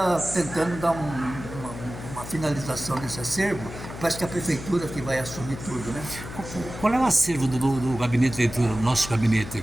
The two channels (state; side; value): noise; left; hum, 11 dB below the sound